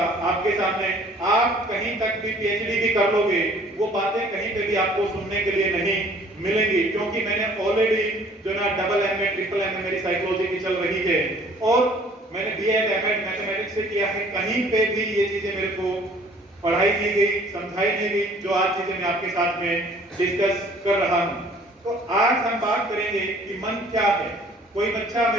आपके सामने, आप कहीं तक भी पीएचडी भी कर लोगे, वो बातें कहीं पे भी आपको सुनने के लिए नहीं मिलेंगी। क्योंकि मैंने ऑलरेडी जो ना डबल एमए, ट्रिपल एमए मेरी साइकोलॉजी की चल रही है और मैंने बीएड एमएड मैथमेटिक्स से किया है। कहीं पे भी ये चीजें मेरे को पढ़ाई नहीं गई, समझाई नहीं गई, जो आज चीजें मैं आपके साथ में डिस्कस कर रहा हूं। तो आज हम बात करेंगे कि मन क्या है। कोई बच्चा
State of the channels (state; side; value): normal; both; correlation 0.54